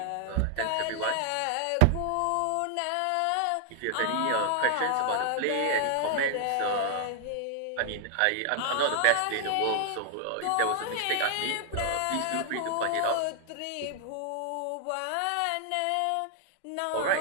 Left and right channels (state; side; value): different; both; correlation 0.00